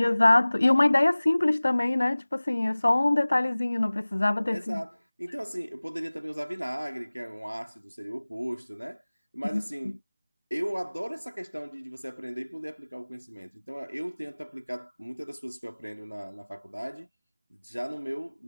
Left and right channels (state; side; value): inverted; both; correlation -1.00